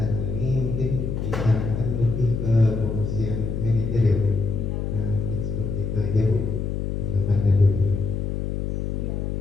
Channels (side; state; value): left; noise; hum, 2 dB below the sound